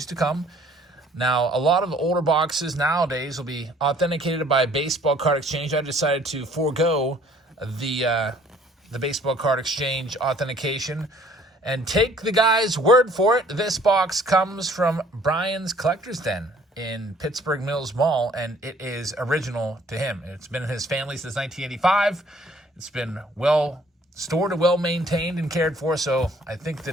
to come. Now, a lot of the older boxes nowadays will be authenticated by a baseball card exchange. I decided to forego the baseball card exchange authentication and take the guy's word for it. This box comes from Brian's Collector's Den in Pittsburgh Mills Mall, and it is original to him. It's been in his family since 1985. It's been well stored and well maintained and cared for, so I think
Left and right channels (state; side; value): normal; both; correlation 0.58